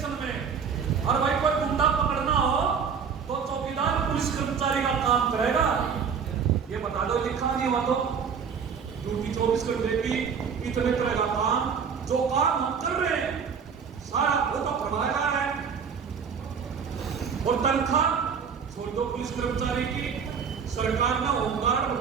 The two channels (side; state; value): left; quieter; 6.5 dB